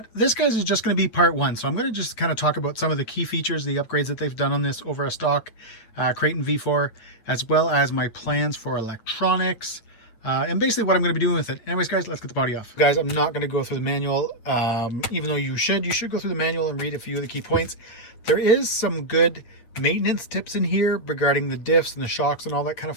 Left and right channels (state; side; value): late; right; 8.9 ms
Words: this, guys, is just going to be part one. So I'm going to just kind of talk about some of the key features, the upgrades that they've done on this over a stock Kraton V4, as well as my plans for electronics, and basically what I'm going to be doing with it. Anyways, guys, let's get the body off. Guys, I'm not going to go through the manual, even though you should go through the manual and read a few of the key points. There is some good maintenance tips in here regarding the diffs and the shocks and all that kind of